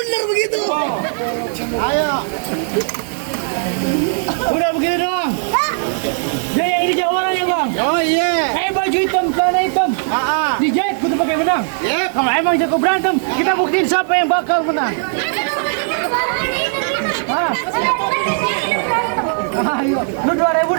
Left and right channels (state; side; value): silent; left; digital silence